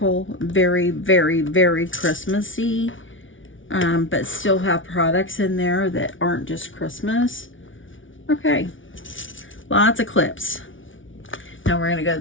very, very, very Christmassy, but still have products in there that aren't just Christmas. Okay, lots of clips. Now we're going to go to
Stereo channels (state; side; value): late; right; 0.56 ms